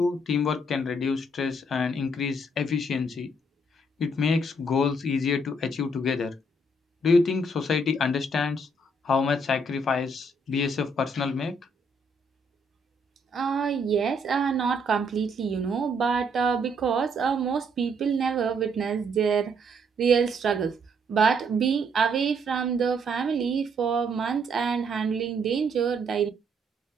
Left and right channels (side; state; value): both; normal; correlation 0.70